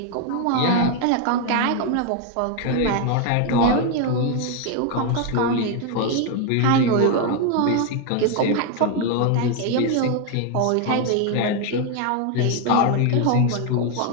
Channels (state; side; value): different; both; correlation 0.01